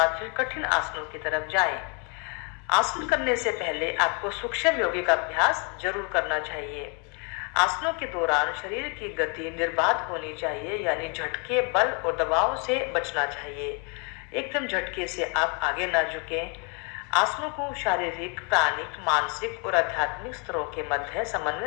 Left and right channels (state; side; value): quieter; right; 35.1 dB